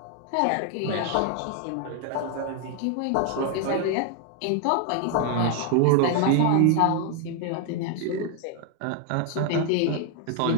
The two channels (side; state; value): both; different; correlation 0.01